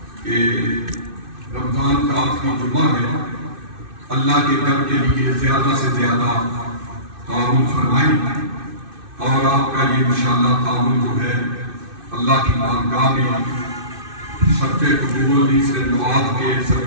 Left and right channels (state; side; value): late; left; 2.6 ms